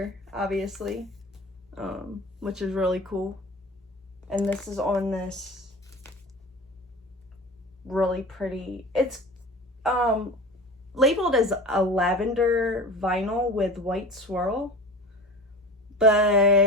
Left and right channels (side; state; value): both; normal; correlation 0.35